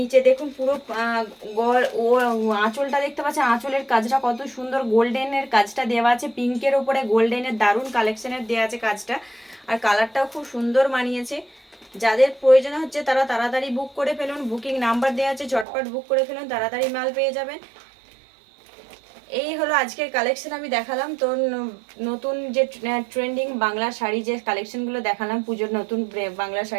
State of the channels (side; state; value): left; drops out; at 15.7 s